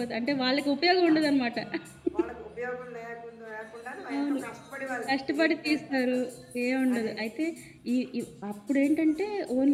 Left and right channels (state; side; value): identical; both; correlation 1.00